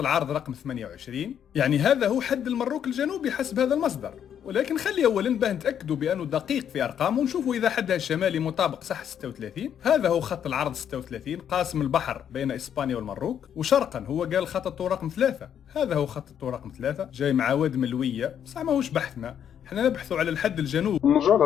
رقم 28، يعني هذا هو حد المروك الجنوبي حسب هذا المصدر، ولكن خلي اولا باه نتاكدوا بانه دقيق في ارقامه ونشوفوا اذا حدها الشمالي مطابق صح 36. هذا هو خط العرض 36 قاسم البحر بين اسبانيا والمروك، وشرقا هو قال خط الطول رقم 3. هذا هو خط الطول رقم 3 جاي مع واد ملويه، بصح ماهوش بحثنا، احنا نبحثوا على الحد الجنوبي. نرجع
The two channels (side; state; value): right; quieter; 9.0 dB